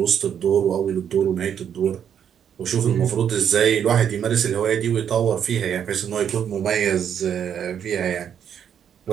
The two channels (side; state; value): left; quieter; 8.6 dB